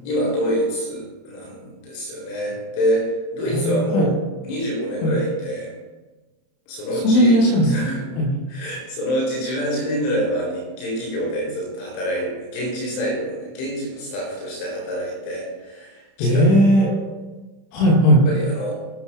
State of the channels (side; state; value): right; late; 31 ms